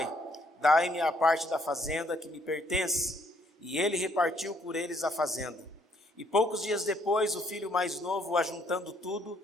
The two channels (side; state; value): both; normal; correlation 0.68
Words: dai-me a parte da fazenda que me pertence. E ele repartiu por eles a fazenda. E poucos dias depois, o filho mais novo, ajuntando tudo,